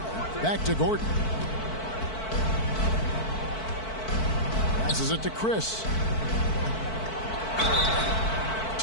Back to Gordon. Passes it to Chris.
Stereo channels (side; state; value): right; late; 4.5 ms